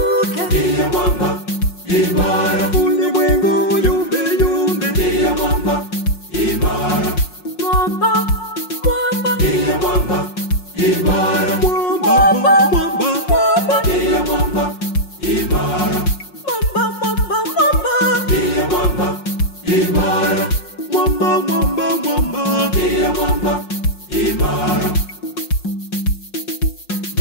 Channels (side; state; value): right; late; 5.6 ms